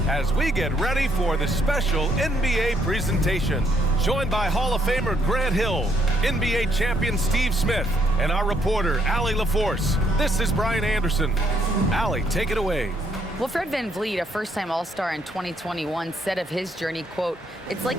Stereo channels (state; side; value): normal; both; correlation 0.71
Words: as we get ready for the special NBA presentation. Joined by Hall of Famer Grant Hill, NBA champion Steve Smith, and our reporter, Allie LaForce. This is Brian Anderson. Allie, take it away. Well, Fred VanVleet, a first-time All-Star in 2021, said of his journey, quote, "It's